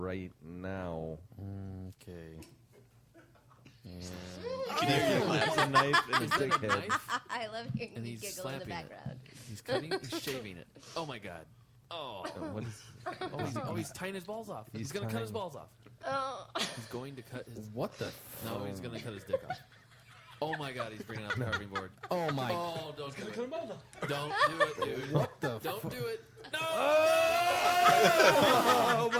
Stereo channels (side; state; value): both; identical; correlation 1.00